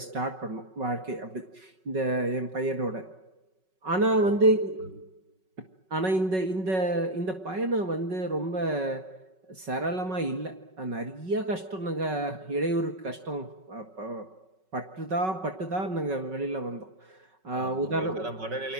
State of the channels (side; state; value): left; late; 5.3 ms